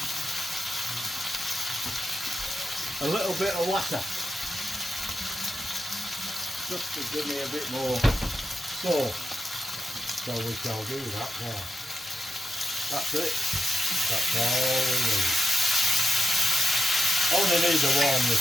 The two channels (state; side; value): normal; both; correlation 0.89